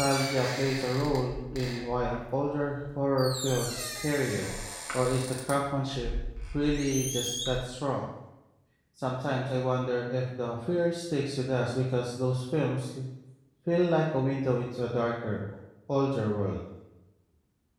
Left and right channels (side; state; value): both; identical; correlation 1.00